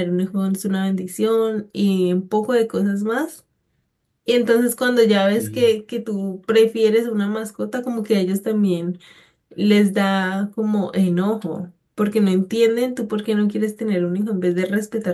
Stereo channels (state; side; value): identical; both; correlation 1.00